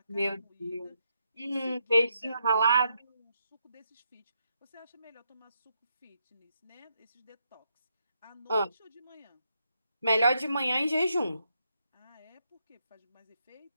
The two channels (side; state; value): both; inverted; correlation -0.79